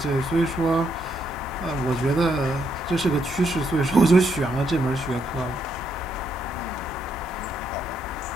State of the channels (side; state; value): both; normal; correlation 0.76